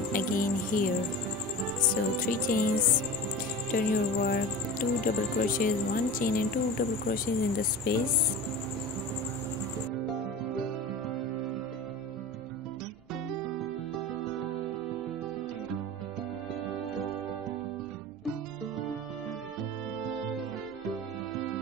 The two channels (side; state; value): both; normal; correlation 0.32